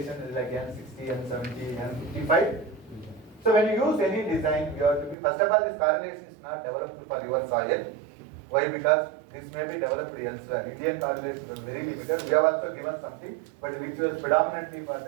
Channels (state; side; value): drops out; left; at 5.2 s